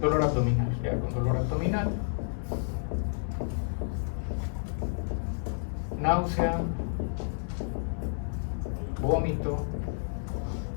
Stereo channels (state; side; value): silent; right; 58 dB below the other